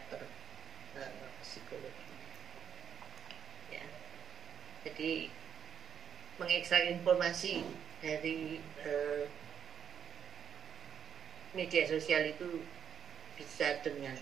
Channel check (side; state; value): left; quieter; 8.1 dB